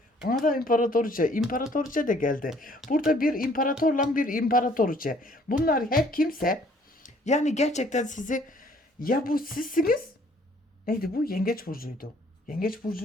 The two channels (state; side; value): normal; both; correlation 0.60